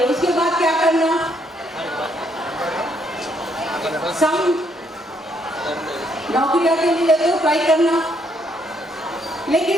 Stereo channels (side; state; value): both; normal; correlation 0.72